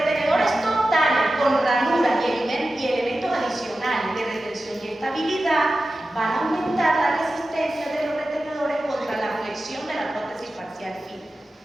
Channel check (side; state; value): both; normal; correlation 0.94